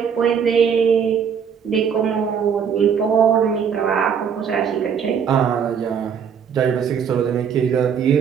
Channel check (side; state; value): left; quieter; 7.3 dB